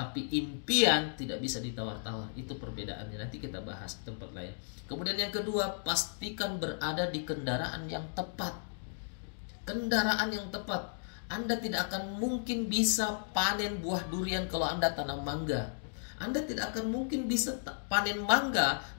impian tidak bisa ditawar-tawar. Itu perbedaannya, nanti kita bahas di tempat lain. Kemudian yang kedua, pastikan berada di kendaraan yang tepat. Kendaraan yang tepat. Anda tidak akan mungkin bisa panen buah durian kalau Anda tanam mangga. Anda tidak akan mungkin bisa panen mangga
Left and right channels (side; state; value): right; silent; digital silence